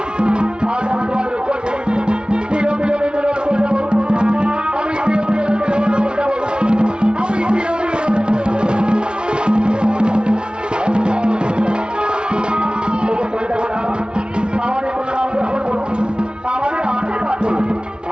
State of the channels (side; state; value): left; late; 0.055 ms